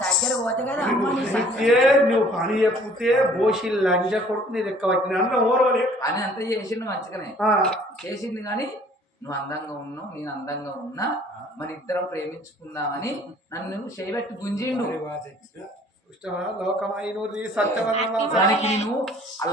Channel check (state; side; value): normal; both; correlation 0.55